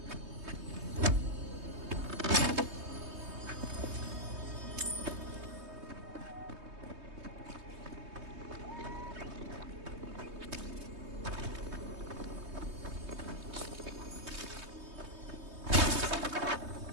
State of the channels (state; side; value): late; left; 3.2 ms